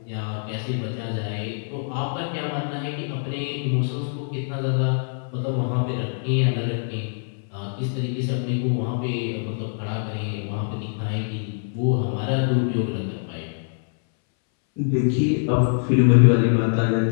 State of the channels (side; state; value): right; silent; 63 dB below the other